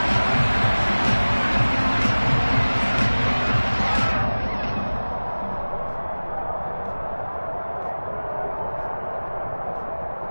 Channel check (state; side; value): inverted; both; correlation -1.00